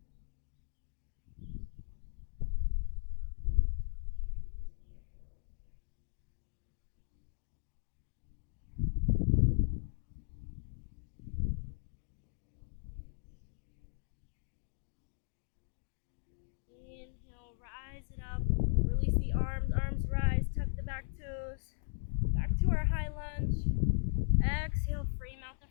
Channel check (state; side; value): silent; right; digital silence